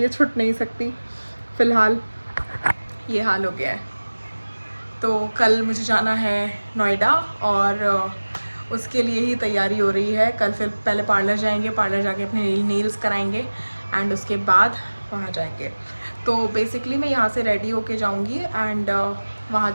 छूट नहीं सकती, फ़िलहाल ये हाल हो गया है। तो कल मुझे जाना है नोएडा, और उसके लिए ही तैयारी हो रही है। कल फिर पहले पार्लर जाएंगे, पार्लर जाके अपने नेल्स कराएंगे, एंड उसके बाद वहाँ जाएंगे। तो बेसिकली मैं यहाँ से रेडी होके जाऊँगी, एंड वहाँ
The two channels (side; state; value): both; inverted; correlation -1.00